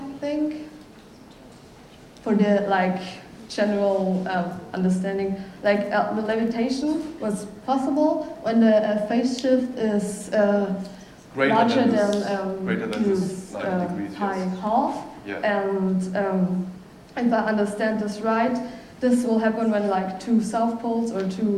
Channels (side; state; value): both; identical; correlation 1.00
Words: think, for the like general understanding, like the levitation was possible when the phase shift is larger than this 90 degrees, pi yes. half. Yeah. And if I understand this right, this will happen when like 2 south poles or